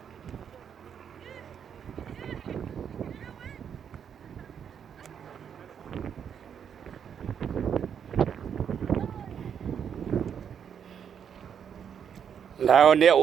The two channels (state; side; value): quieter; left; 8.0 dB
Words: Là, on est